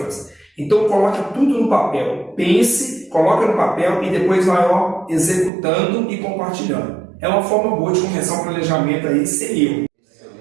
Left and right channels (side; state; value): left; drops out; at 5.5 s